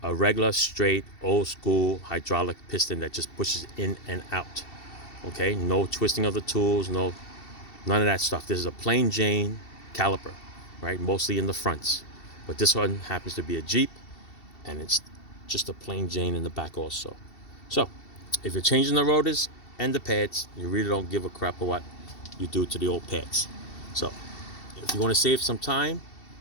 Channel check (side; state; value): right; late; 2.7 ms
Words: a regular, straight, old school hydraulic piston that just pushes in and out. Okay, no twisting of the tools, none of that stuff. This is a plain Jane caliper, right? Mostly in the fronts. But this one happens to be a Jeep, and it's just a plain Jane in the back also. So, if you're changing the rotors and the pads, you really don't give a crap of what you do to the old pads. So, if you want to save some time